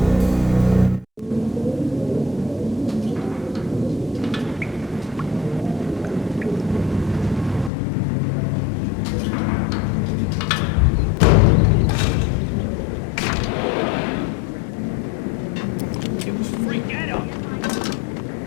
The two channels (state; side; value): drops out; right; at 7.7 s